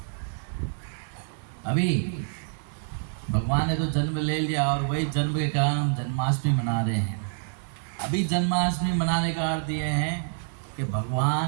अभी भगवान ने तो जन्म ले लिया, और वही जन्म के कारण हम जन्माष्टमी मना रहे हैं। अभी जन्माष्टमी मनाने का अर्थ ये है कि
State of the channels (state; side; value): silent; left; digital silence